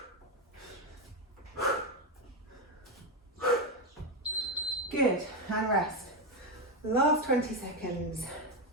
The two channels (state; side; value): normal; both; correlation 0.08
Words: Good, and rest. Last 20 seconds.